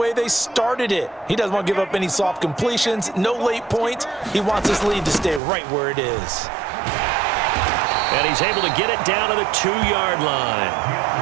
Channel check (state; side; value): drops out; left; at 5.4 s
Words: they started it. He doesn't want to give up any soft completions, no late points. He wants his lead to stay right where it is. And he's able to get it down to the 2-yard line.